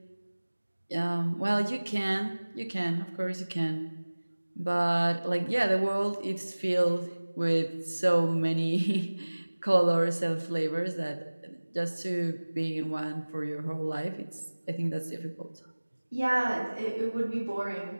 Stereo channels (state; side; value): inverted; both; correlation -1.00